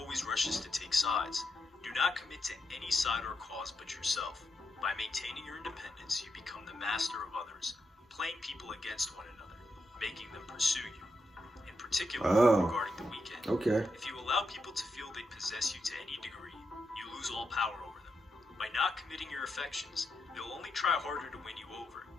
rushes to take sides. Do not commit to any side or cause but yourself. By maintaining your independence, you become the master of others, playing people against one another, making them pursue you." In particular, regarding The Weeknd, if you allow people to feel they possess you to any degree, you lose all power over them. By not committing your affections, they'll only try harder to win you over.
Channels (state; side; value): normal; both; correlation 0.84